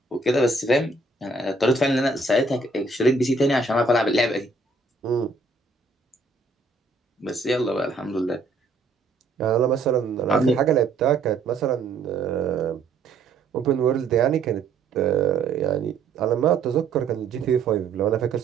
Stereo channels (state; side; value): quieter; left; 3.7 dB